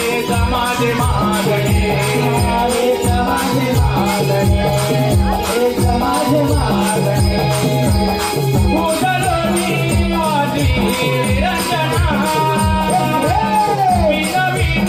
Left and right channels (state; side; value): identical; both; correlation 1.00